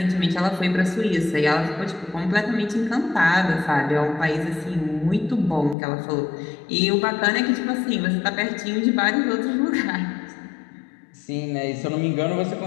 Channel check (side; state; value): right; drops out; at 5.8 s